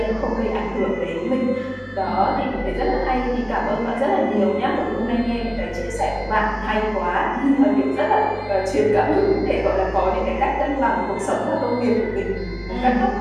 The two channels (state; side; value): identical; both; correlation 1.00